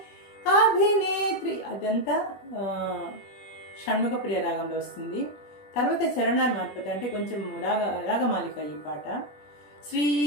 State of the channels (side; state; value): right; late; 21 ms